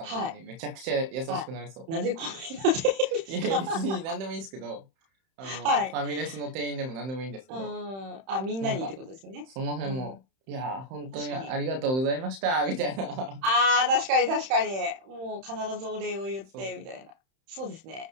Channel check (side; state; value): left; late; 31 ms